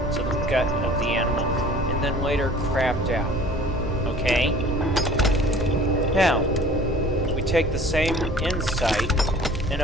the gut of the animal and then later crapped out. Okay? Now, we take the same insight and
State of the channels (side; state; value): both; normal; correlation 0.48